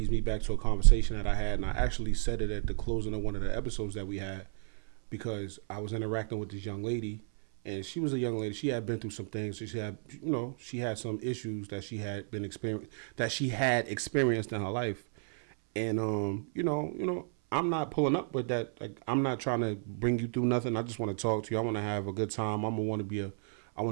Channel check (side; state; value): left; silent; 56 dB below the other